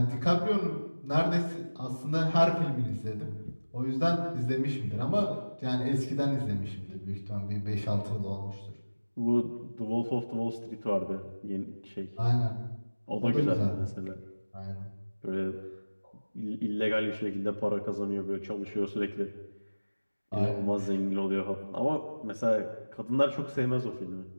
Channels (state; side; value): inverted; both; correlation -1.00